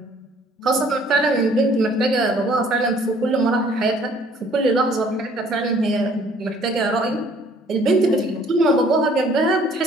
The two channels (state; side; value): normal; both; correlation 0.58